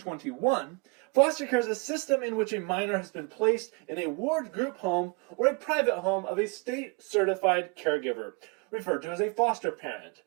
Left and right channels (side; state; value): left; quieter; 30.4 dB